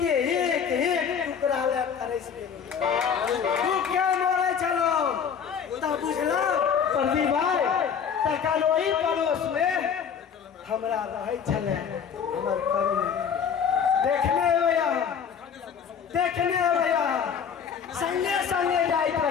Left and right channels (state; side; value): quieter; right; 7.3 dB